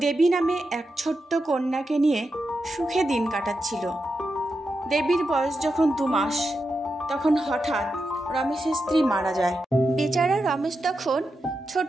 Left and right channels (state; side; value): normal; both; correlation 0.88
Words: দেবী নামে এক ছোট্ট কন্যাকে নিয়ে সুখে দিন কাটাচ্ছিল। দেবীর বয়স যখন 2 মাস, তখন হঠাৎ রমেশের স্ত্রী মারা যায়। বেচারা রমেশ তখন